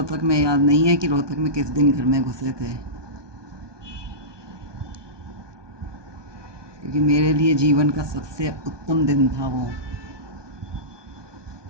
में याद नहीं है कि रोहतक में किस दिन घर में घुसे थे, क्योंकि मेरे लिए जीवन का सबसे उत्तम दिन था वो।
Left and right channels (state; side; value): late; left; 1.2 ms